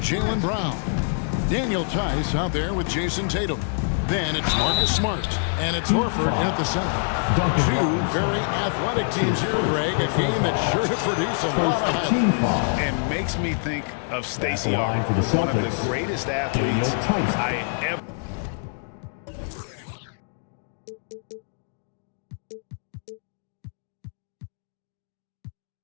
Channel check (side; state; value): right; silent; digital silence